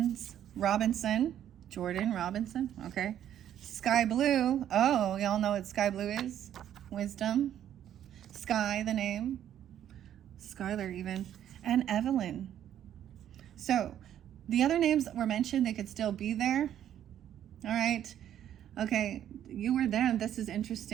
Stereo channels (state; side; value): quieter; left; 10.6 dB